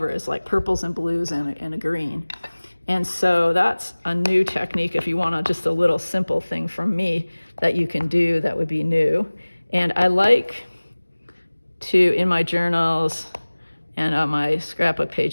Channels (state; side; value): inverted; both; correlation -1.00